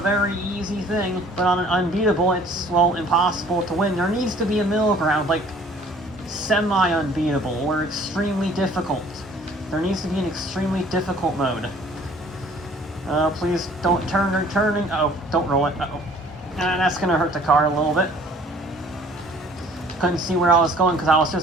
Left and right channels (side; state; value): both; normal; correlation 0.54